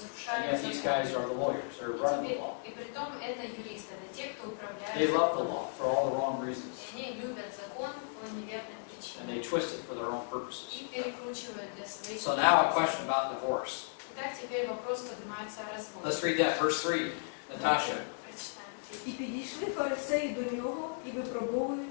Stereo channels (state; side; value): silent; right; digital silence